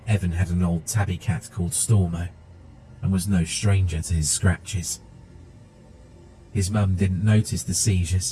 Evan had an old tabby cat called Stormo, and was no stranger to his scratches. His mum didn't notice the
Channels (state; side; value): identical; both; correlation 1.00